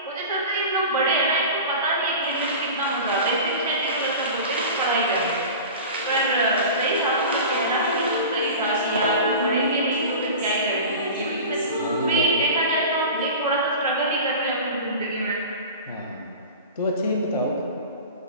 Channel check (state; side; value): inverted; both; correlation -0.34